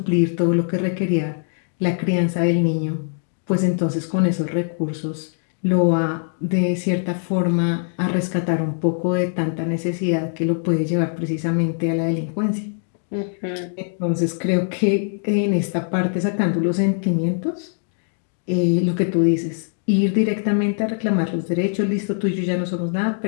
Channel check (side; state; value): right; silent; digital silence